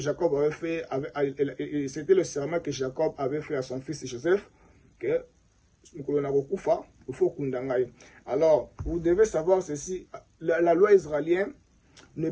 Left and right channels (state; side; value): identical; both; correlation 1.00